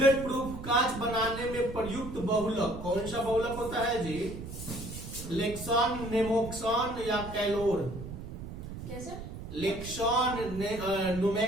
प्रूफ कांच बनाने में प्रयुक्त बहुलक कौन सा बहुलक होता है जी? लेक्सॉन, नेमोक्सॉन या कैलोर? कैसे? लेक्सॉन,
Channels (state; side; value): noise; right; rumble, 10 dB below the sound